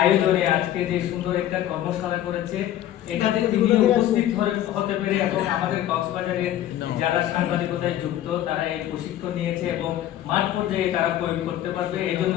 আজকে যে সুন্দর একটা কর্মশালা করেছে এটাতে তিনি উপস্থিত হতে পেরে এবং আমাদের কক্সবাজারের যারা সাংবাদিকতায় যুক্ত তারা এই প্রশিক্ষণ নিয়েছে এবং মাঠ পর্যায়ে তারা প্রয়োগ করতে পারবে এই জন্য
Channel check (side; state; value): right; quieter; 12.5 dB